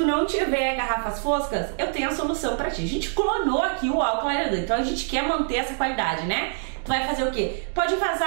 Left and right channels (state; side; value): silent; left; digital silence